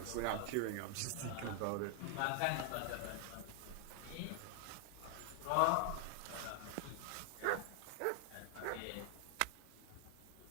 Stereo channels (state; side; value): different; both; correlation 0.00